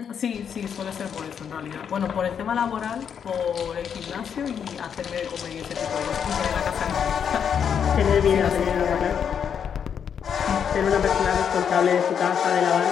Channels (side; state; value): right; quieter; 7.7 dB